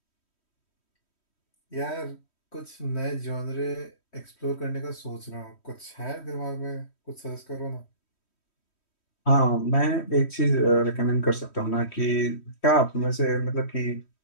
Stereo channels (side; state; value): right; late; 3.1 ms